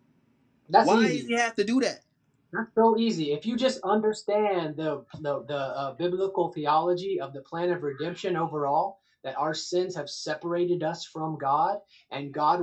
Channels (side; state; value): both; identical; correlation 1.00